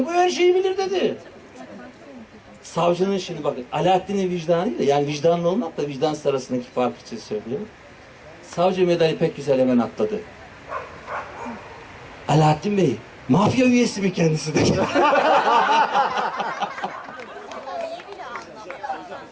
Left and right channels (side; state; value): both; identical; correlation 1.00